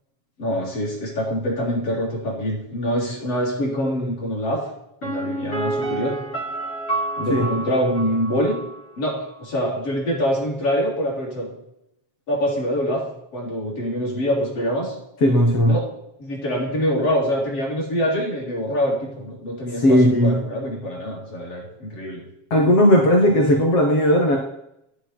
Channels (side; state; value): right; late; 7.4 ms